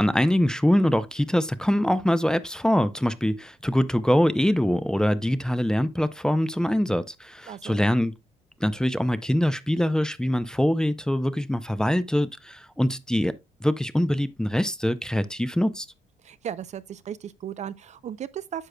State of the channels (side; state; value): both; normal; correlation 0.97